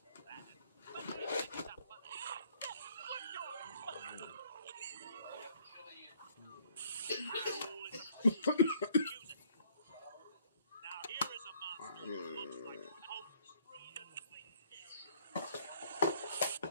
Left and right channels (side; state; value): both; inverted; correlation -0.61